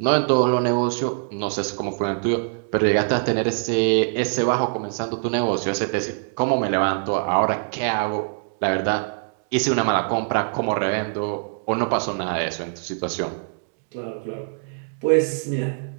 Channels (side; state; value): left; silent; 63 dB below the other